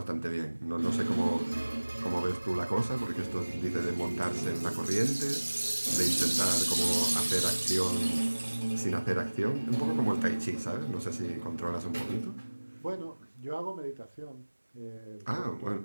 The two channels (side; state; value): both; inverted; correlation -1.00